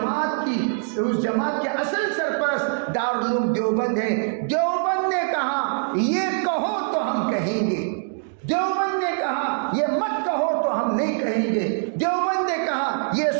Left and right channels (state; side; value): silent; left; digital silence